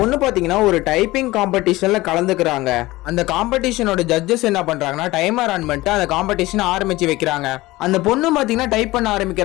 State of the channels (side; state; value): right; quieter; 19.1 dB